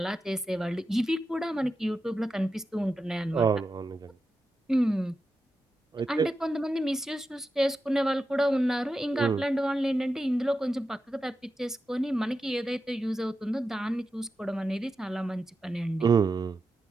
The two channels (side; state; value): both; normal; correlation 0.90